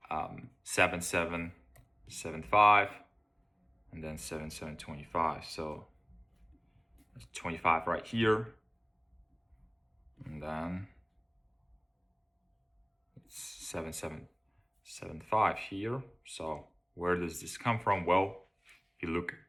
7775 and then 7725. So that's 25 right here, and then it's 7775 here. So where does this come from? Well, if you look at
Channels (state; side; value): identical; both; correlation 1.00